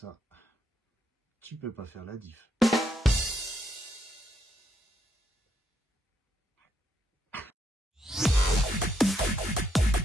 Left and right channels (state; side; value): normal; both; correlation 0.77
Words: tu peux pas faire la diff.